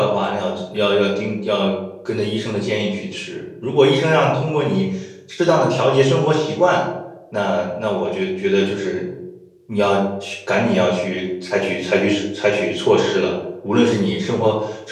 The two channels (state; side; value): identical; both; correlation 1.00